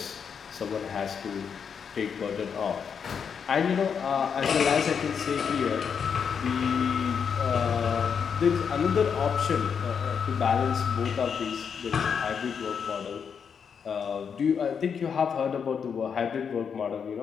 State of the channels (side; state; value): right; quieter; 6.8 dB